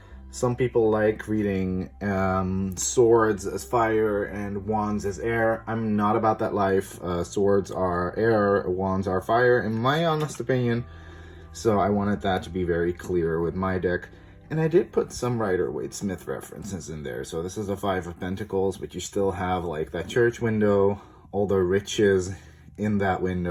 Some people like reading swords as fire and wands as air. I'm not about that life. Swords are air, wands are fire, in my honest opinion. So I wanted that to be very clear with my deck. And I did put some Rider-Waite-Smith references in there. So this is a Five of Pentacles, but you still have like that church window, all the riches in that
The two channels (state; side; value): identical; both; correlation 1.00